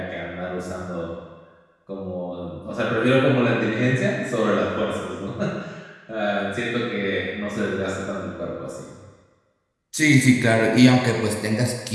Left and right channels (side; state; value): both; identical; correlation 1.00